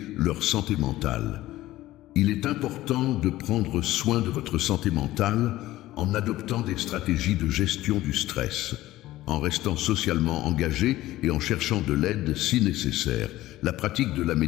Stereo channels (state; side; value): quieter; right; 16.0 dB